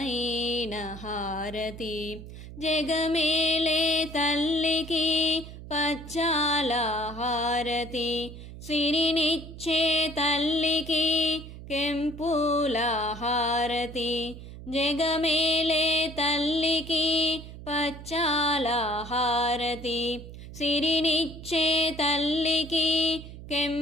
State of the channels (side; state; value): right; noise; hum, 13 dB below the sound